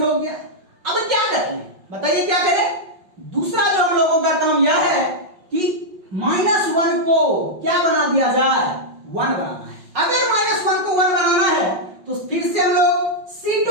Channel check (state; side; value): late; left; 5.4 ms